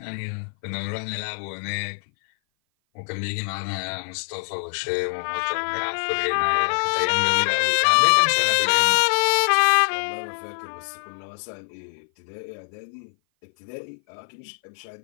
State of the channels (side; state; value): right; silent; 57 dB below the other